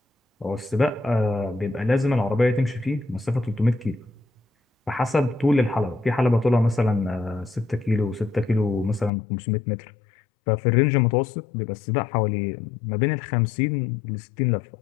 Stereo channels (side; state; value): right; drops out; at 9.1 s